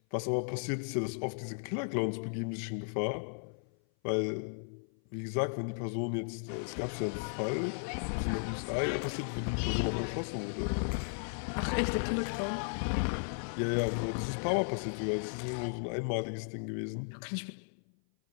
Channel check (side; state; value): right; silent; 54 dB below the other